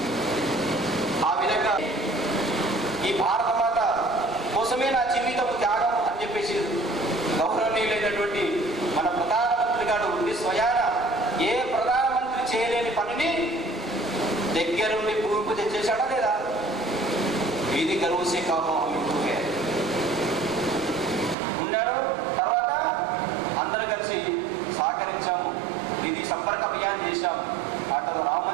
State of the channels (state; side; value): drops out; left; at 21.4 s